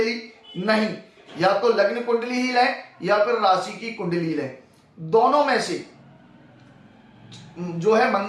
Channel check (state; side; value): identical; both; correlation 1.00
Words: ली। नहीं, या तो लग्न कुंडली ही लें या फिर राशि की कुंडली लें, दोनों में से जो है